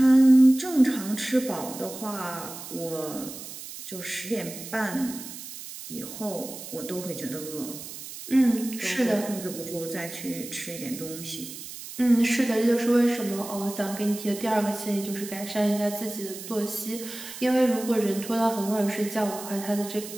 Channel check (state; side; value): noise; right; hiss, 12 dB below the sound